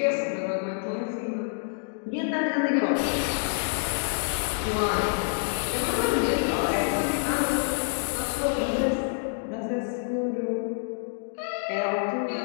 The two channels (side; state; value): right; silent; digital silence